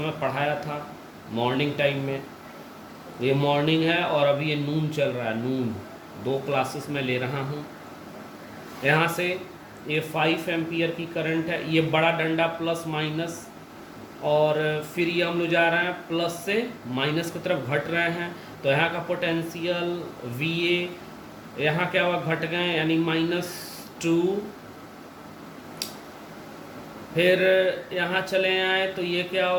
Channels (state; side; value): identical; both; correlation 1.00